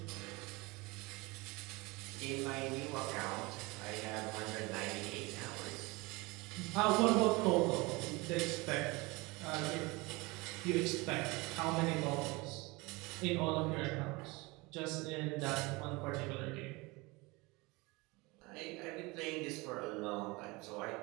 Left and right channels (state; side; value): quieter; left; 24.4 dB